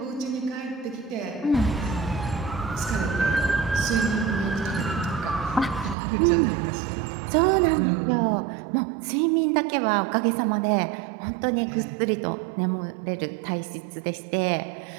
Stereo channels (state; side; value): drops out; left; at 6.0 s